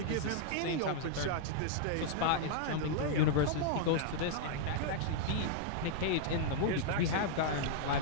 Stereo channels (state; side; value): different; both; correlation -0.01